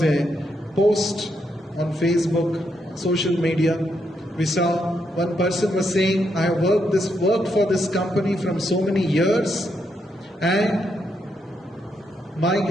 a post on Facebook, social media. We saw one person was saying, I have worked for this company from so many years, and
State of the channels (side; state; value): both; normal; correlation 0.79